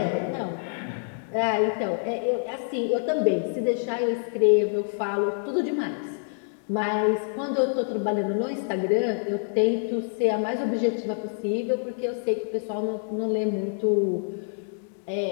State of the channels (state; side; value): silent; right; digital silence